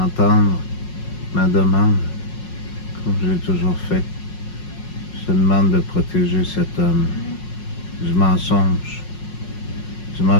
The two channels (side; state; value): right; late; 5.5 ms